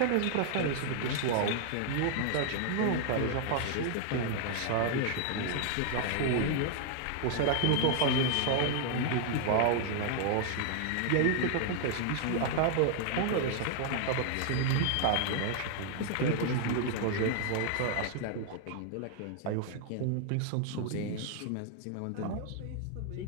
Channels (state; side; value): different; both; correlation 0.00